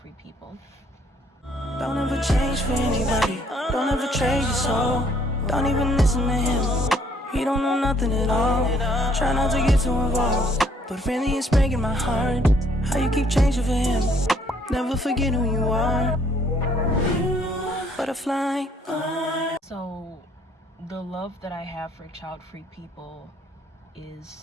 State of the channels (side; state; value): both; normal; correlation 0.64